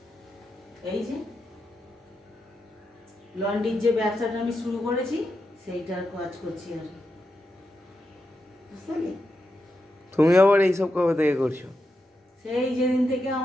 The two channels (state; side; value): normal; both; correlation 0.87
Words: এই যে লন্ড্রির যে ব্যবসাটা আমি শুরু করেছি সেইটার কাজ করছি আর কি। বুঝতে পারলি? তুমি আবার এইসব কবে থেকে করছো? সেই যেদিন থেকে